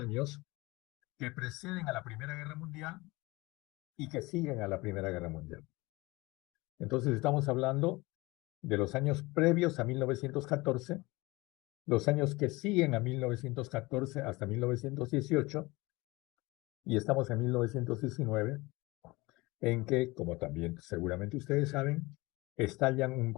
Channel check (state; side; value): quieter; right; 22.5 dB